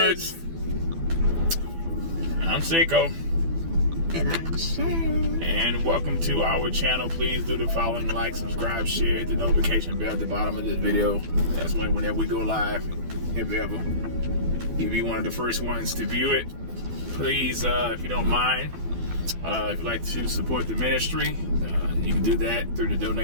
I'm Saiko. And I'm Sharon. And welcome to our channel. Please do the following: like, subscribe, share, hit the notification bell at the bottom of this video. That's whenever we go live, if ever. You'll be one of the first ones to view it. Please, if you don't mind, if you'd like to support the ministry, you can do that through the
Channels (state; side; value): late; left; 12 ms